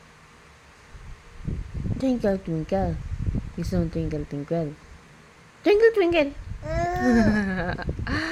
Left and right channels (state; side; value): identical; both; correlation 1.00